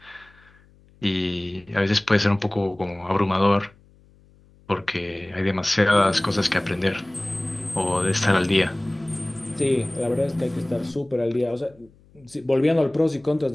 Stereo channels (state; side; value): noise; left; hum, 29 dB below the sound